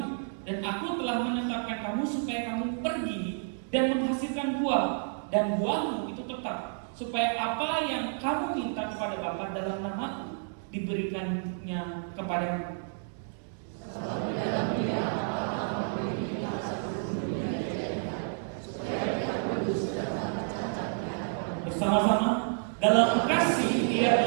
Dan aku telah menetapkan kamu supaya kamu pergi dan menghasilkan buah, dan buahmu itu tetap, supaya apa yang kamu minta kepada Bapa dalam namaku diberikannya kepadamu. Bersama-sama dalam kasih Dia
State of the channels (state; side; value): silent; left; digital silence